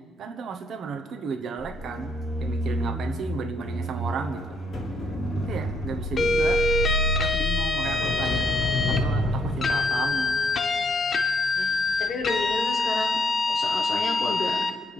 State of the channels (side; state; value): both; normal; correlation 0.73